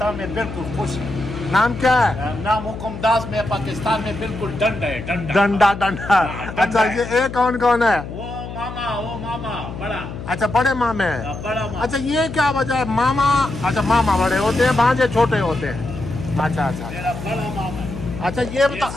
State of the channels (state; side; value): noise; left; hum, 9 dB below the sound